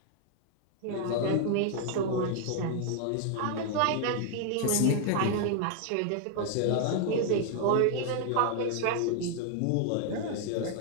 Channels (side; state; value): both; different; correlation 0.00